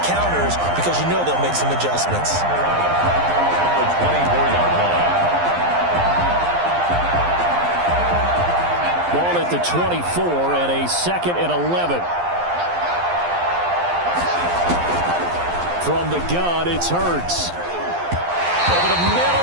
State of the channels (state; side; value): late; left; 11 ms